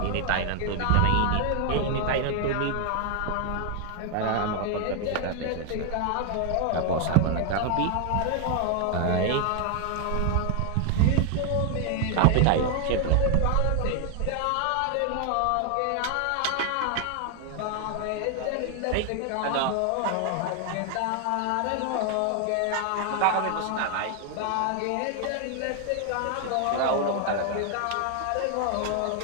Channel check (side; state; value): both; different; correlation 0.00